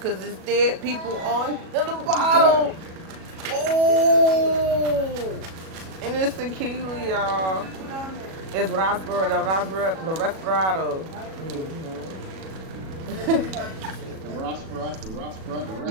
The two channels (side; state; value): left; late; 37 ms